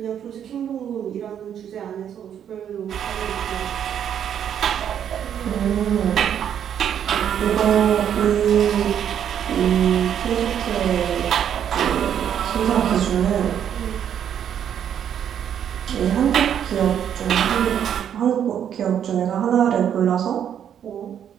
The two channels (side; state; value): left; quieter; 9.2 dB